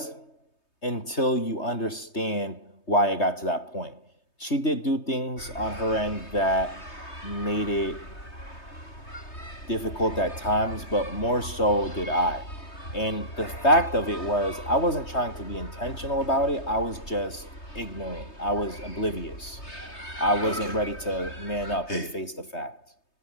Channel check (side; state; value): right; late; 3.2 ms